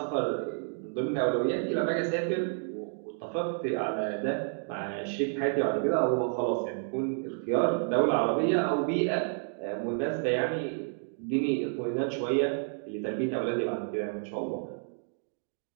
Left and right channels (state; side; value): silent; left; 58 dB below the other